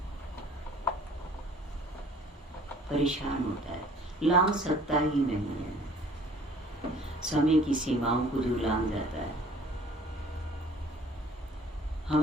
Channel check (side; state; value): both; normal; correlation 0.53